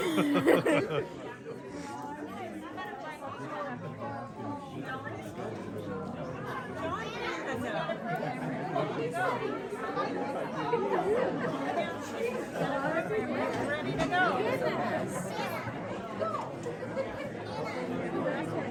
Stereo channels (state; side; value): identical; both; correlation 1.00